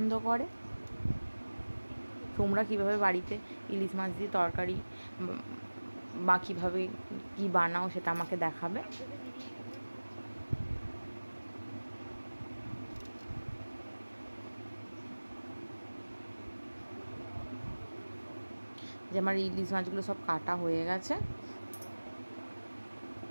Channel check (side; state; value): both; inverted; correlation -1.00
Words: করে। তোমরা কীভাবে বাড়িতে ইলিশ মাছ দিয়ে তরকারি বা কীভাবে কী বানাও সেটা আমাকে দেখাবে। যে আমার ইলিশ মাছগুলো সব কাটা হয়ে গেছে।